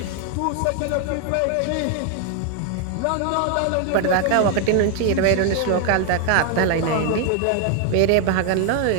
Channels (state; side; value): different; both; correlation 0.00